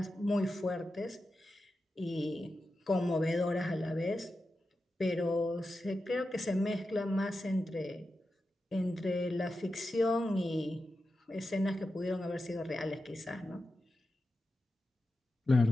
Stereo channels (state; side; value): normal; both; correlation 0.91